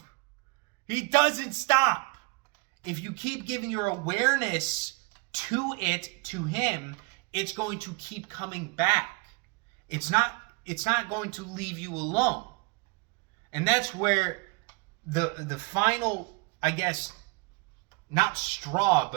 He doesn't stop. If you keep giving your awareness to it, to him, it's going to keep coming back. It's not going to leave you alone. And that's where the final, I guess, not straw,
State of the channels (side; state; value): left; quieter; 30.6 dB